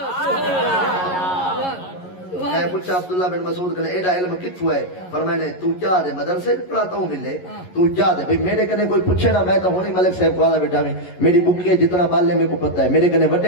میں پوچھا عبداللہ بن مسعود کہنے ایڈا علم کتھو ہے فرمائے تو کیا دے مدرسے پڑھاتا ہوں ملے تو کیا دے بھئی میرے کنے کوئی پوچھے نا میں تو ہونی ملک صاحب کو آدھا بیٹھا میں میری بکی ہے جتنا بالے میں کو پتہ ہے میرے کنے وڈے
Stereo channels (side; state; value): right; late; 11 ms